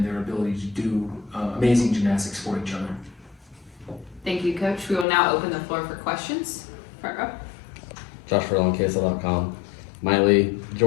their ability to do amazing gymnastics for each other. Thank you, Coach. We will now open the floor for questions. Front row. Josh Furlong, KSL.com. Maile,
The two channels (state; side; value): drops out; right; at 5.1 s